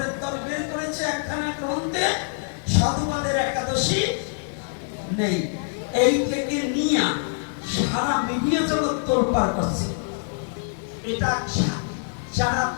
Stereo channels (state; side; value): silent; right; digital silence